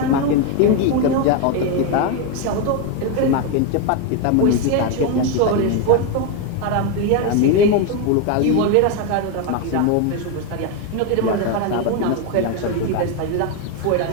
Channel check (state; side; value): different; both; correlation 0.02